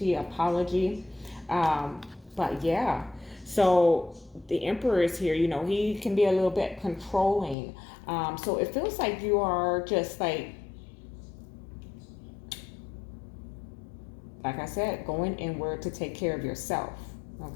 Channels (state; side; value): drops out; right; at 7.6 s